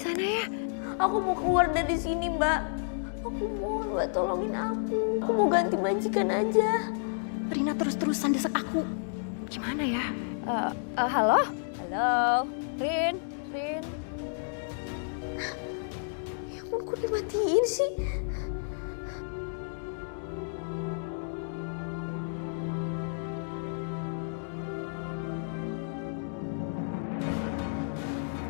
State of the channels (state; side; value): silent; right; digital silence